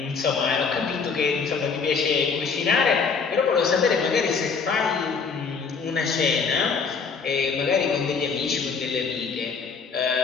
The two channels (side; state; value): right; quieter; 5.4 dB